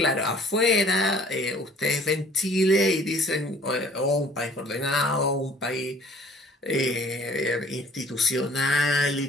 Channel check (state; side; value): normal; both; correlation 0.54